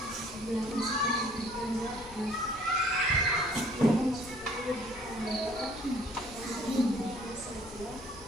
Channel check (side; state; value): both; normal; correlation 0.57